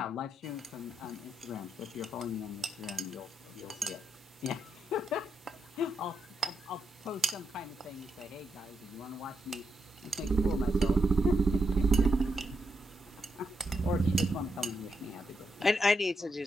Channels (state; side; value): normal; both; correlation 0.82